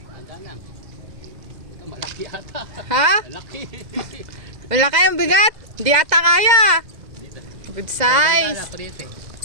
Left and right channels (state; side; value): late; left; 2.0 ms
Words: Malaki ata. Ha? Malaki. Malaki ang bigat. Di ata kaya. Good size.